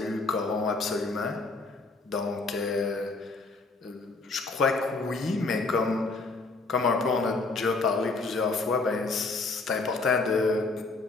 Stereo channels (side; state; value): right; quieter; 3.6 dB